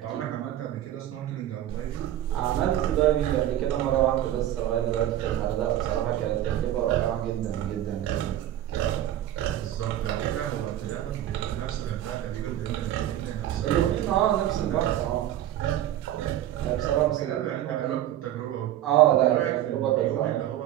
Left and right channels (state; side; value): quieter; left; 12.5 dB